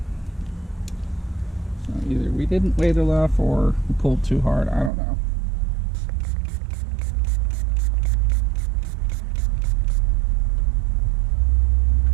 So either we didn't wait enough or we pulled too hard, I don't know.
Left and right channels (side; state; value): left; drops out; at 4.9 s